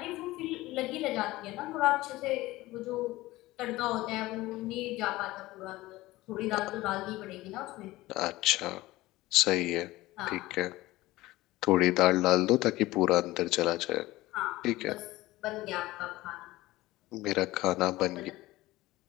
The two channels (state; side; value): quieter; right; 18.3 dB